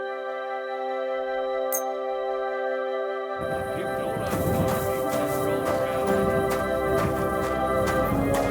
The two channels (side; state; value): both; identical; correlation 1.00